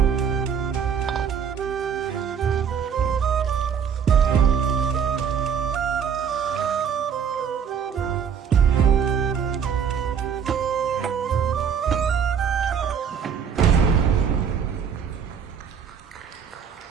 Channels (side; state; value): left; quieter; 7.3 dB